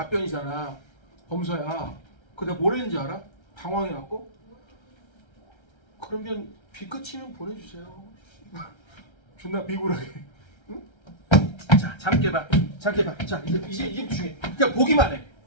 범서야. 그 내가 뭘 했는지 알아? 당황해갖고 그러면 비 끝이면 보내주세요. 존나 비굴하게. 응? 자, 잠 깨봐. 자, 이제 중요해. 그냥 보기만 해.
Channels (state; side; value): late; right; 1.3 ms